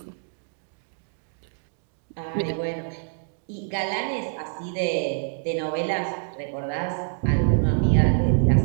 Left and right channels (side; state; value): left; silent; digital silence